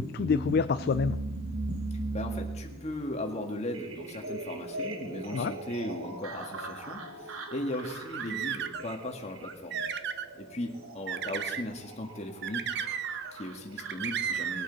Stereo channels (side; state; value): both; normal; correlation 0.41